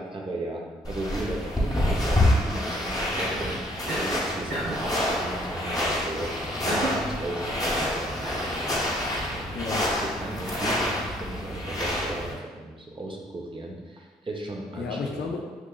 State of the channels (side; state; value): both; normal; correlation 0.64